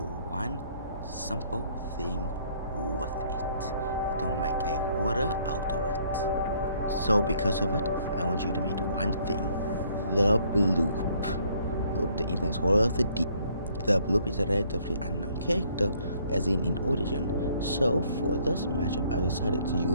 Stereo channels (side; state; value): both; inverted; correlation -0.63